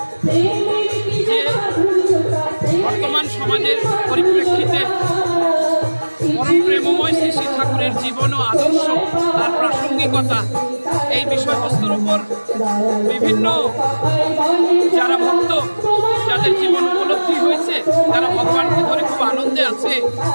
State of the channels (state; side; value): inverted; both; correlation -1.00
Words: যে বর্তমান সমাজের পরিপ্রেক্ষিতে পরম প্রেমময় শ্রী শ্রী ঠাকুরের জীবন ও আদর্শ, তার প্রাসঙ্গিকতা, এই বিষয়বস্তুর উপর বিভিন্ন যারা ভক্ত, যাদের জীবন উপলব্ধি হয়েছে, যারা ভগবানকে ধরে খুব আনন্দে আছে,